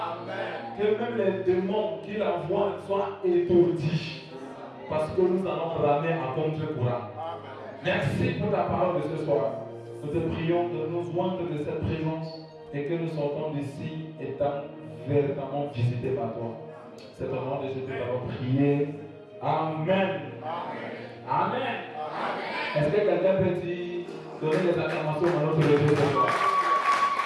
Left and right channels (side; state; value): both; identical; correlation 1.00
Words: Que même les démons qu'il envoie soient étourdis. Parce que nous allons ramer à contre-courant. Merci pour ta parole de ce soir. Nous te prions de nous joindre de cette présence et que nous sortons d'ici étant véritablement visités par toi. C'est au nom de Jésus que nous avons prié. Amen. Amen. Amen. Est-ce que quelqu'un peut donner des acclamations à notre Dieu ce soir?